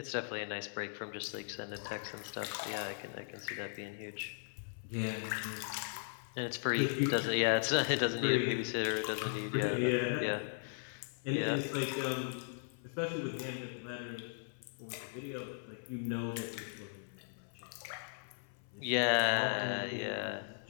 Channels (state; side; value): silent; right; 53 dB below the other